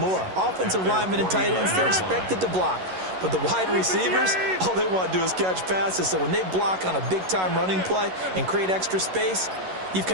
Offensive linemen and tight ends, they're expected to block. But the wide receivers, all they want to do is catch passes. So when they block on a big-time running play and create extra space, you've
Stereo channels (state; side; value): late; left; 11 ms